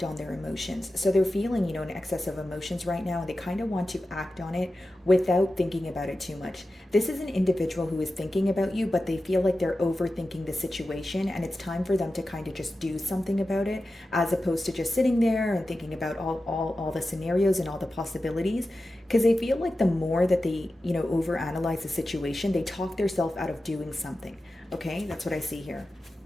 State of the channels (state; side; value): normal; both; correlation 0.93